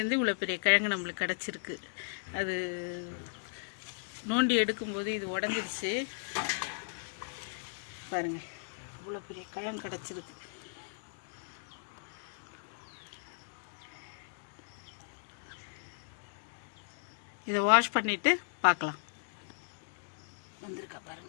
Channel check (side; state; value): right; silent; digital silence